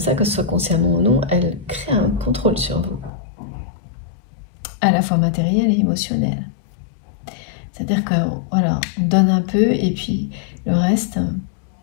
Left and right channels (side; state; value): right; drops out; at 3.1 s